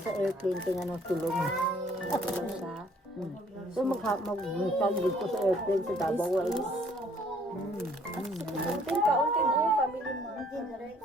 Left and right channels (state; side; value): normal; both; correlation 0.61